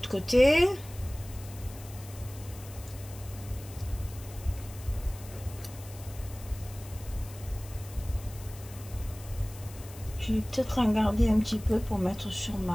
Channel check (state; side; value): noise; left; hiss, 18 dB below the sound